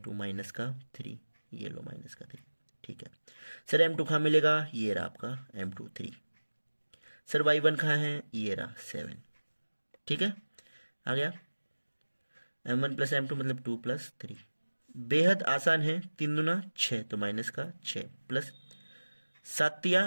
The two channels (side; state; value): both; inverted; correlation -1.00